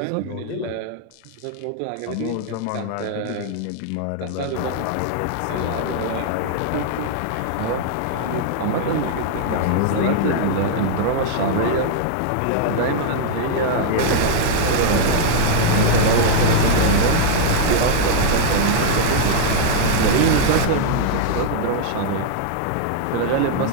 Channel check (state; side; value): different; both; correlation -0.01